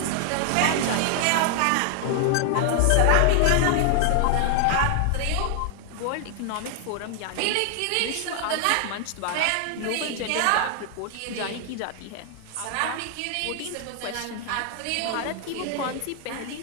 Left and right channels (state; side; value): different; both; correlation 0.00